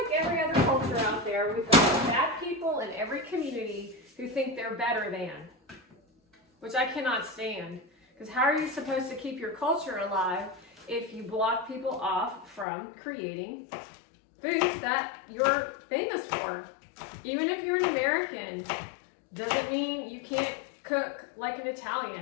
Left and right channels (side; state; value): right; drops out; at 12.7 s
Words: every other culture out there, we've got bad people in every community who think they're better than, which I cannot stand. Because how are you supposed to keep your culture alive if you block people off from creating foods that you're famous for? Even if you're an American, doesn't mean you can't cook like an